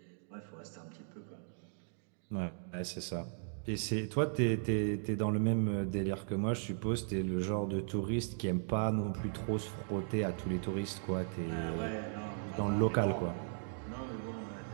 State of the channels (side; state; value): left; silent; digital silence